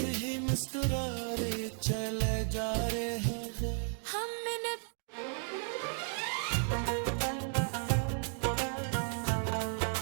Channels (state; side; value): silent; left; 55 dB below the other